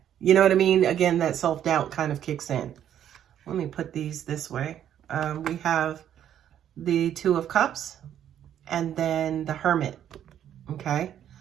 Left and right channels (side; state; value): left; quieter; 10.2 dB